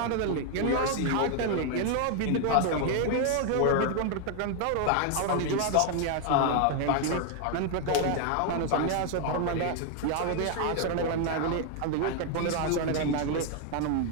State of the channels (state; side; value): different; both; correlation 0.00